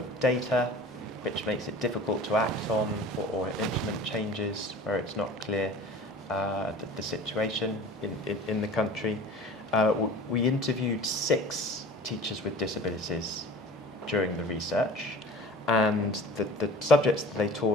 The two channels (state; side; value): normal; both; correlation 0.41